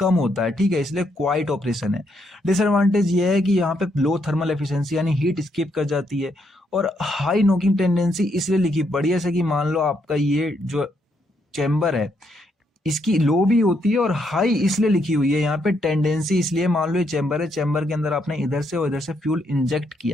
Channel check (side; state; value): both; normal; correlation 0.76